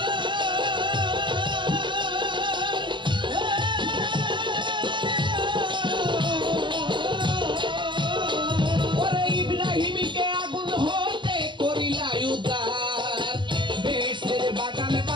ওরে ইব্রাহিমকে আগুন হতে করিলা উদ্ধার বেহেশতের বাগান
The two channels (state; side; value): late; left; 0.23 ms